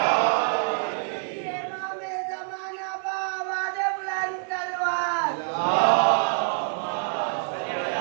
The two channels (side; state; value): left; silent; 61 dB below the other